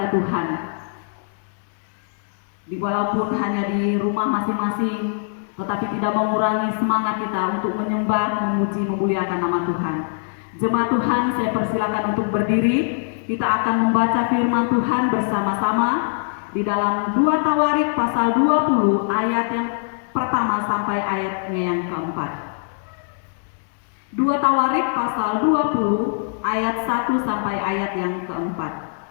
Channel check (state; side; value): silent; right; digital silence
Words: Tuhan. Walaupun hanya di rumah masing-masing, tetapi tidak mengurangi semangat kita untuk menyembah, memuji, memuliakan nama Tuhan. Jemaat Tuhan, saya persilakan untuk berdiri. Kita akan membaca firman Tuhan bersama-sama di dalam 2 Tawarik pasal 20 ayat yang pertama sampai ayatnya yang keempat. 2 Tawarik pasal 20 ayat 1 sampai ayat yang keempat.